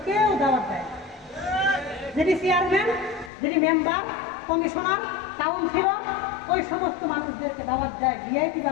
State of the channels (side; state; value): right; drops out; at 3.3 s